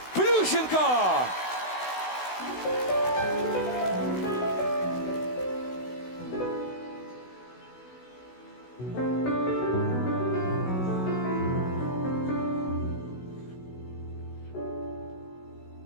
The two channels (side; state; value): right; late; 16 ms